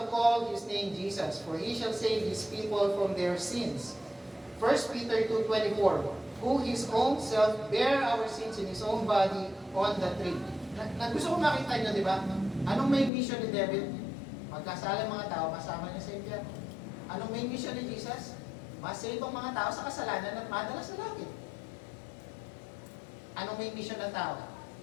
call his name Jesus, for he shall save his people from their sins. 1 Peter 2:24, who his own self bare our sins in his own body on the tree. Gusto ko makita nyo, di ba? Anong may mission ni David? Magkasala mga tao, masama niya sa impyerno. Anong main mission ni Jesus? Masave ang mga tao sa kasalanan at madala sa langit. Anong main mission ng tao?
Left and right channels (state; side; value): drops out; right; at 13.1 s